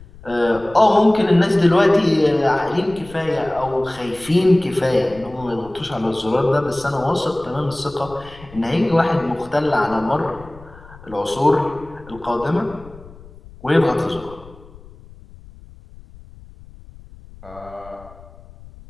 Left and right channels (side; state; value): left; noise; rumble, 21 dB below the sound